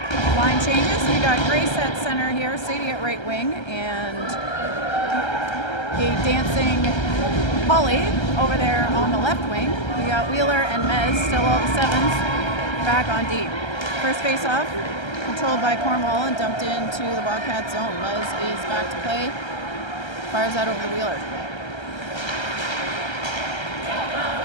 Line changes. We got Grace at center here, Sadie at right wing, and a dancing Holly over there on the left wing. We got Wheeler and Mez, still all the sevens, back on D. First face-off, controlled by Cornwall and dumped into the Wildcat zone. Mez is back to play, fires out over the Wheeler.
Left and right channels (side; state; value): right; late; 1.3 ms